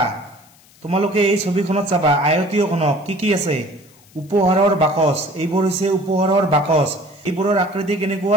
তোমালোকে এই ছবিখনত চাবা আয়তীয় ঘনক কি কি আছে, উপহাৰৰ বাকচ, এইবোৰ হৈছে উপহাৰৰ বাকচ, এইবোৰৰ আকৃতি কেনেকুৱা,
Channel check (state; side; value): noise; left; hiss, 28 dB below the sound